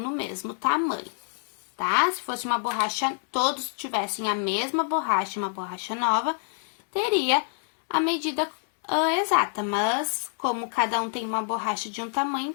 no mesmo tamanho, tá? Se fosse uma borracha, todos tivessem a mesma borracha, uma borracha nova, teria a medida exata. Mas como cada um tem uma borracha de um tamanho,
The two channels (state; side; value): silent; right; 60 dB below the other